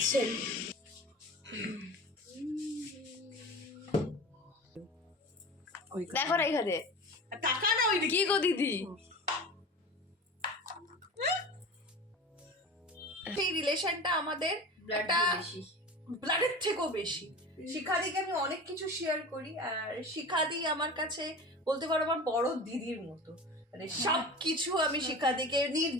দেখো না এখানে টাকা না ওই কি গো দিদি, সেই রিলেশনটা আমাদের একটা ব্লাডের থেকেও বেশি। শিখাদিকে আমি অনেক কিছু শেয়ার করি, আর শিখাদি আমার কাছে বলতে পারো আমার বড় দিদির মতো, মানে সব কিছু আমি শিখাদিকে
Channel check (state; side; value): normal; both; correlation 0.33